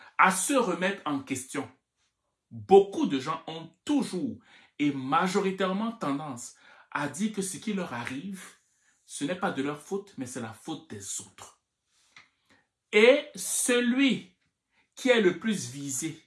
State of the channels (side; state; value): both; identical; correlation 1.00